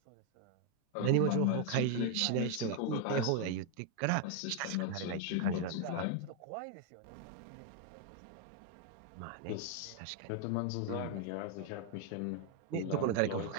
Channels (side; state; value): both; different; correlation 0.00